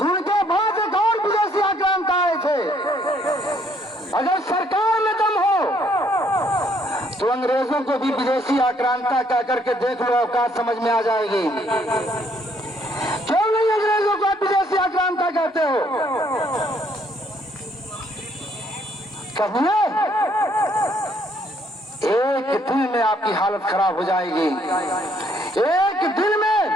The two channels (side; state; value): both; normal; correlation 0.67